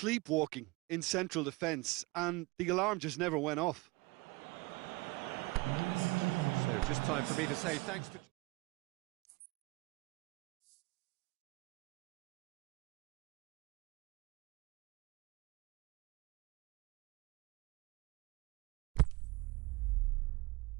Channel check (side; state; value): left; quieter; 24.0 dB